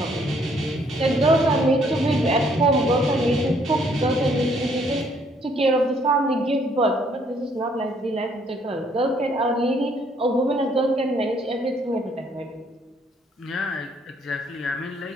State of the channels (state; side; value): normal; both; correlation 0.66